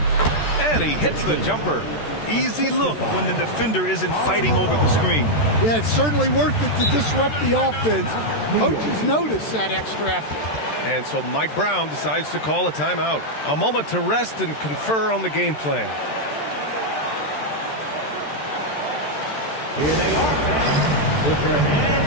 And he hits the jumper. Easy look when the defender isn't fighting over the screen. Yeah, it's certainly worth it to disrupt the offense. Coaches notice that extra effort. And so Mike Brown decides to call a timeout. A moment to rest and confer on the game plan. Here they are, fans. Put your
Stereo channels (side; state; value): right; late; 13 ms